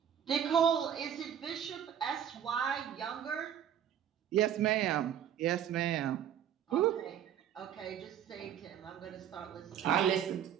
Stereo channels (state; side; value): quieter; left; 9.6 dB